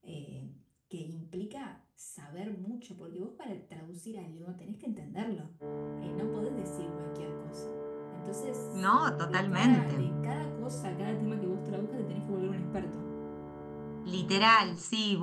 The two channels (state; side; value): identical; both; correlation 1.00